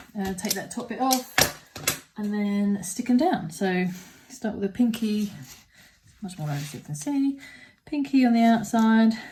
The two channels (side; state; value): both; identical; correlation 1.00